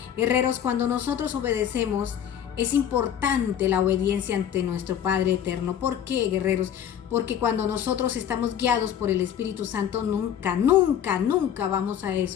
Guerreros, cuando nosotros obedecemos, es importante la obediencia ante nuestro Padre eterno. ¿Por qué, guerreros? Porque cuando nosotros estamos guiados por el Espíritu Santo, nunca vamos a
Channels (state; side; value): quieter; right; 9.5 dB